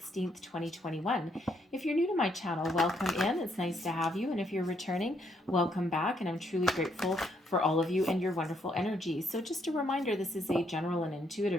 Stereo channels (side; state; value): both; normal; correlation 0.73